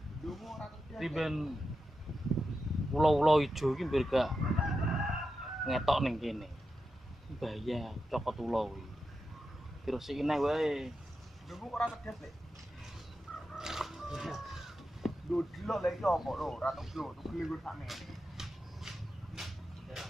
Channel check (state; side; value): normal; both; correlation 0.89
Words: Dungu ora kerja. Riben pulau-pulau ijo iki mbir gak ngetok ning kene. Bahaya cokot ulo iki. Dirusiki neh wae. Dungu ora kerja, Le. Lho delok lek iki opo lho, ora tuglo, tuglo iku sakmene.